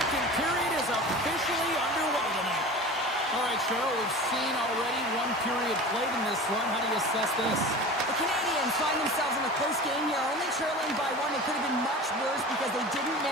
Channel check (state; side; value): normal; both; correlation 0.35